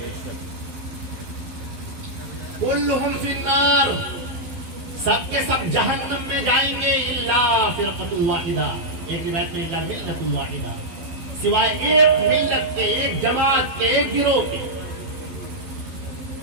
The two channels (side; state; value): left; late; 12 ms